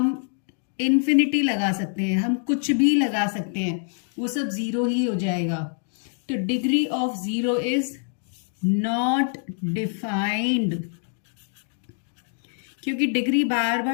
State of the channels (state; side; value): silent; right; 62 dB below the other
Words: इन्फिनिटी लगा सकते हैं, हम कुछ भी लगा सकते हैं, वो सब 0 ही हो जाएगा। तो degree of 0 is not defined, क्योंकि डिग्री बार